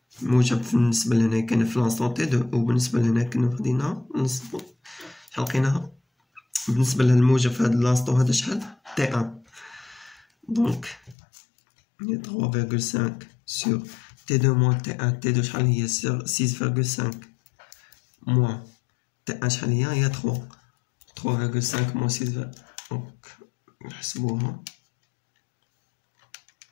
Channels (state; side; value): drops out; right; at 11.2 s